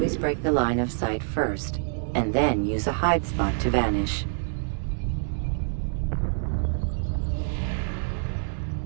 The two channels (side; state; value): left; silent; digital silence